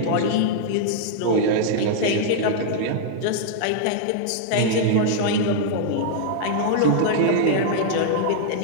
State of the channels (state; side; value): different; both; correlation -0.01